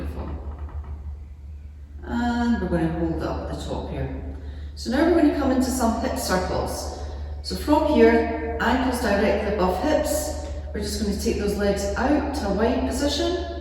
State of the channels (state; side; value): identical; both; correlation 1.00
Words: And we're going to hold up at the top here. So now we're going to come into some hip circles. So from here, ankles directly above hips, we're just going to take those legs out to a wide position.